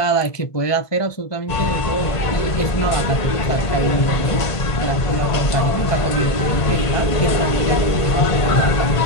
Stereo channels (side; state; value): right; late; 1.5 ms